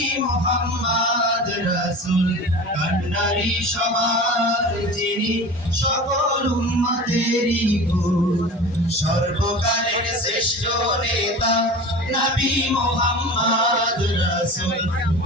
মুহাম্মদ রাসূল কান্ডারি সবার যিনি সকল উম্মতেরই গুরু সর্বকালের শ্রেষ্ঠ নেতা নবী মুহাম্মদ রাসূল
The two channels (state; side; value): normal; both; correlation 0.35